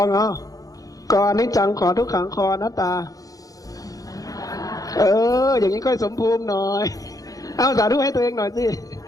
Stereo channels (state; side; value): late; right; 0.17 ms